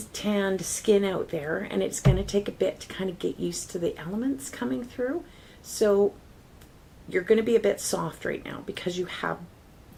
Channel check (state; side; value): identical; both; correlation 1.00